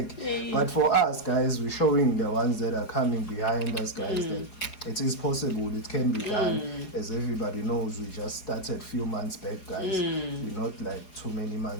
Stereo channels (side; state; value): right; late; 4.8 ms